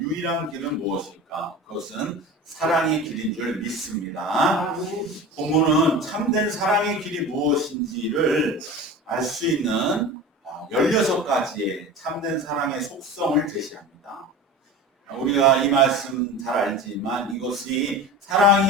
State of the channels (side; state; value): both; normal; correlation 0.33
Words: 길은 무엇일까? 그것은 사랑의 길인 줄 믿습니다. 본문은 참된 사랑의 길이 무엇인지를 알 수 있는 16가지의 참된 사랑의 속성을 제시합니다. 우리가 이 말씀 잘 알지만 이것이